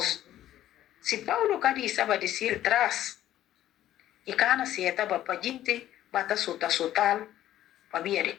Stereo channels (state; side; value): quieter; right; 12.8 dB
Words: Se Paulo cari estava de si atrás, e cana se estava para gente, bata sotal, para via de